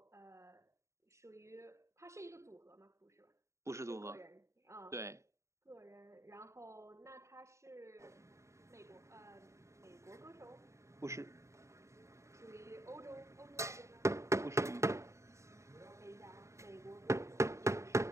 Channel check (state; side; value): late; left; 0.14 ms